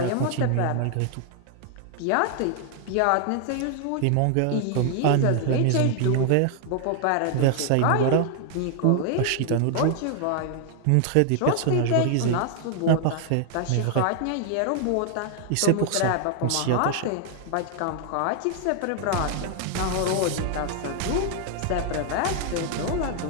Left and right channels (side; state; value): both; different; correlation 0.00